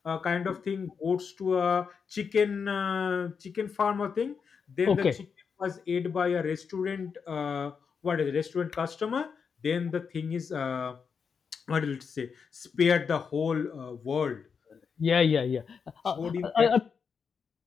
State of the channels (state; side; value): quieter; right; 6.1 dB